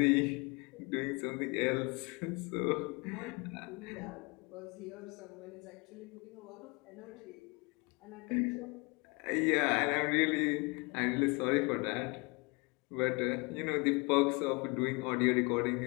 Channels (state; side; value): quieter; right; 29.1 dB